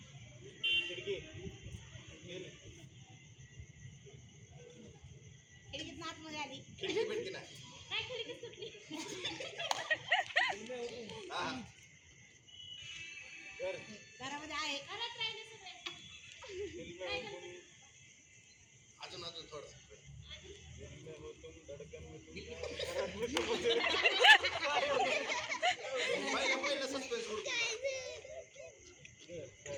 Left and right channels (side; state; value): both; identical; correlation 1.00